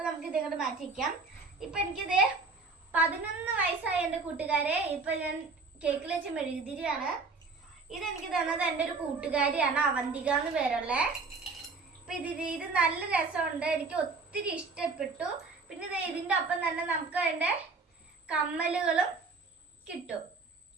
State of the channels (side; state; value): left; quieter; 4.1 dB